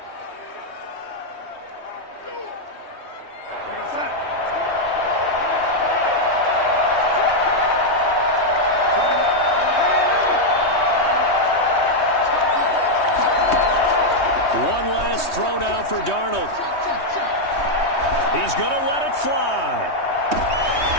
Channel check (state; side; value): late; right; 3.2 ms